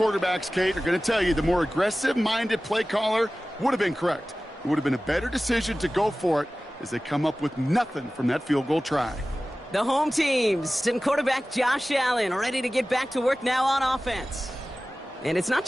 Kate, are going to tell you the more aggressive-minded play caller would have been correct. It would have been a better decision to go for it as they come up with nothing from that field goal try. The home teams and quarterback Josh Allen ready to get back to work now on offense. And it's not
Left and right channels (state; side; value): normal; both; correlation 0.97